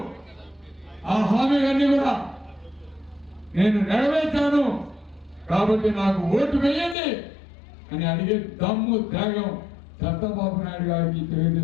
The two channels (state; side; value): drops out; right; at 7.0 s